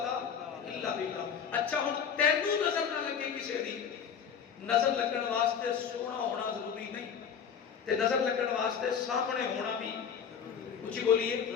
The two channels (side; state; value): right; quieter; 7.3 dB